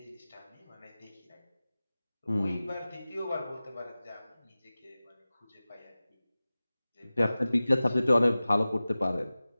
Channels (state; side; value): inverted; both; correlation -0.97